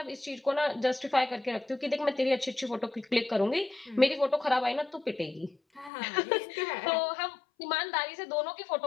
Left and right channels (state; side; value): drops out; right; at 5.9 s